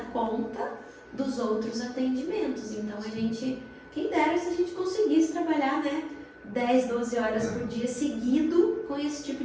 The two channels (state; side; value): identical; both; correlation 1.00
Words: conta dos outros atendimentos. Então a gente, quem dera se a gente conseguisse trabalhar, né, 10, 12 horas por dia seguido com esse tipo